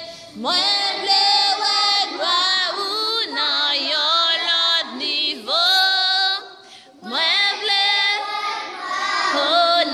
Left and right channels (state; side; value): identical; both; correlation 1.00